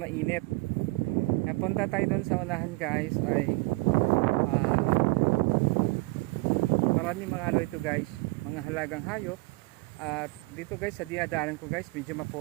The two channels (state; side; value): quieter; left; 24.8 dB